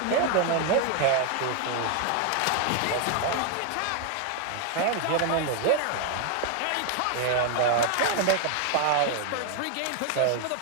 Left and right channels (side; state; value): both; different; correlation 0.00